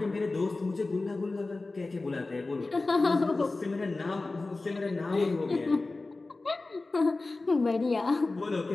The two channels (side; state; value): right; quieter; 3.3 dB